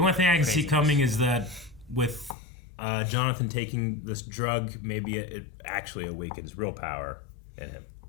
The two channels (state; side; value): drops out; right; at 2.4 s